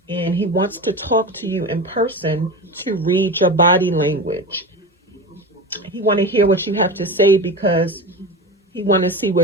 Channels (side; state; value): both; normal; correlation 0.27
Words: And he wants to talk to you in person to read your body language. He want to hear what you have to say, because he want to see where